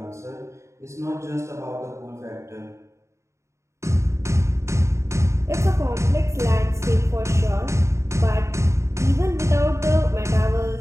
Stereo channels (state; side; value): late; left; 0.14 ms